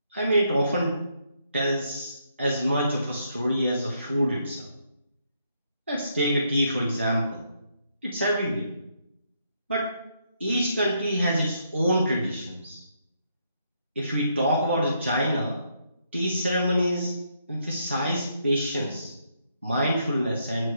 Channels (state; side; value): inverted; both; correlation -0.75